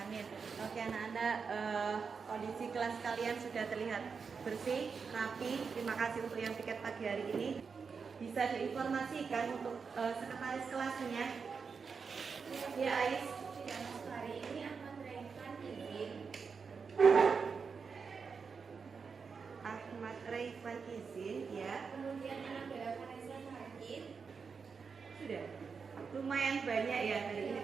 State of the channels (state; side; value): quieter; left; 5.5 dB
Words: Oke anak-anak, kondisi kelas kalian sudah terlihat bersih, rapi. Terima kasih untuk yang tiket pagi hari ini. Bisa diinformasikan untuk sekretaris kelasnya. Ya Ais. Ya, hari ini akan menerangkan izin. Ahmad Raifan izin ya. Kemudian anak Bella Vanessa hadir. Sudah. Lumayan banyak ya hari ini